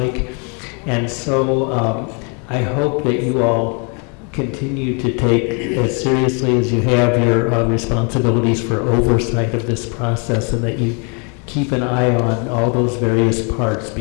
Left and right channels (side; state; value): right; quieter; 35.5 dB